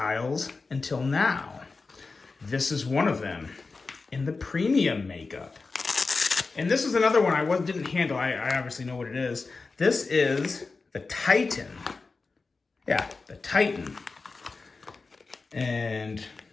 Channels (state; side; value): quieter; right; 4.1 dB